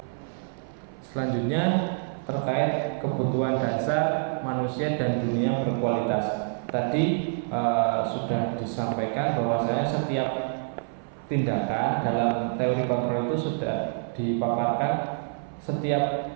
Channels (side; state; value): left; silent; 57 dB below the other